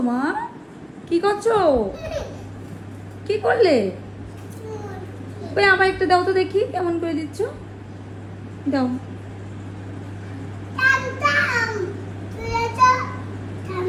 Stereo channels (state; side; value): identical; both; correlation 1.00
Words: মা? কি করছো? কি করলে? ওই আমার একটা দাও তো দেখি, কেমন করে দিচ্ছ। দাও।